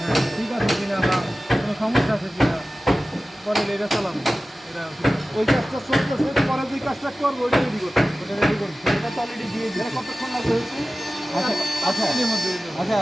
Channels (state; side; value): normal; both; correlation 0.96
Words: ঠিক আছে কিনা বা কোনো সমস্যা আছে কিনা পরে এটা চালাবো এটা ওই কাজটা চলতেছে পরে যে কাজটা করবো ওইটা রেডি করতে ওটা রেডি করতে এটা তো অলরেডি দিয়ে দিলে কতক্ষণ লাগবে হয়েছে আচ্ছা আচ্ছা